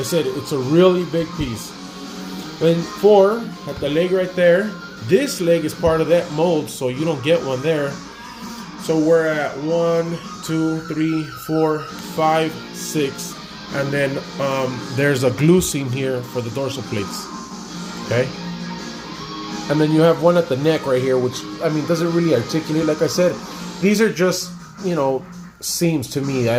said, it's a really big piece. Then 4 at the leg right there. This leg is part of that mold, so you don't get one there. So we're at 1, 2, 3, 4, 5, 6, and then there's a glue seam here for the dorsal plates. Okay, and then you have one at the neck right here, which, I mean, doesn't really articulate. Like I said, these are just, you know, seams to me. I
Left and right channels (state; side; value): identical; both; correlation 1.00